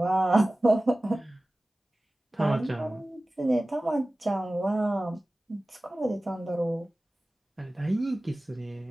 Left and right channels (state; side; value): normal; both; correlation 0.97